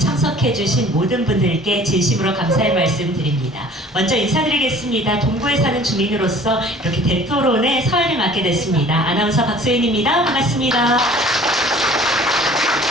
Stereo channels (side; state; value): both; normal; correlation 0.49